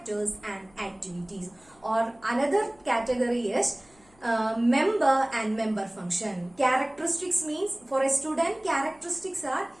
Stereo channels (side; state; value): left; noise; hum, 30 dB below the sound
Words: and activities. Or another category is member and member function. Characteristics means for a student, characteristics are